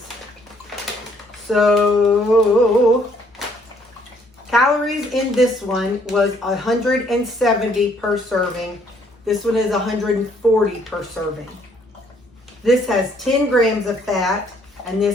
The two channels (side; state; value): both; normal; correlation 0.65